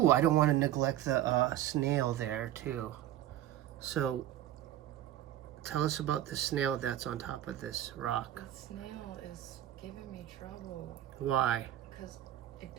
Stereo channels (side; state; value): left; quieter; 12.7 dB